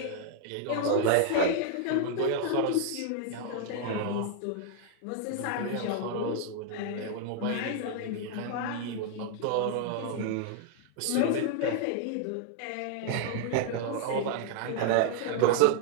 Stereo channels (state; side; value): different; both; correlation 0.00